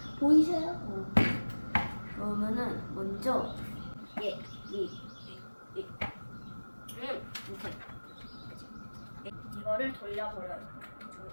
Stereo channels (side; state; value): both; inverted; correlation -1.00